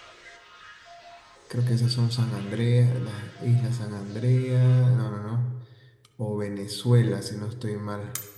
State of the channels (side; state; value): both; identical; correlation 1.00